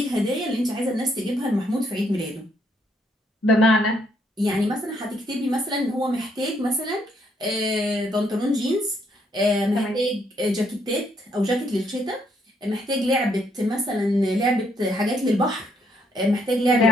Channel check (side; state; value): both; normal; correlation 0.72